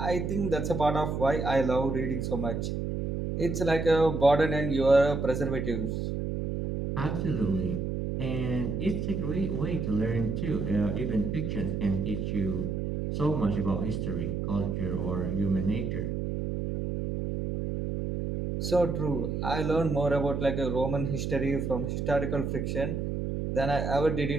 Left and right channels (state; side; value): noise; right; hum, 2 dB below the sound